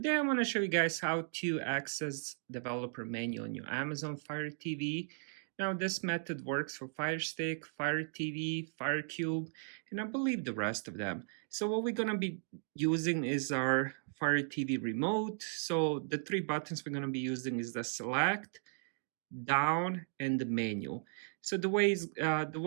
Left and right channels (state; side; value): silent; left; digital silence